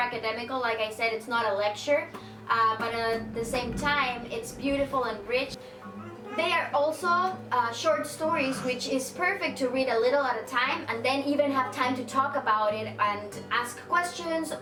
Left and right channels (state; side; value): identical; both; correlation 1.00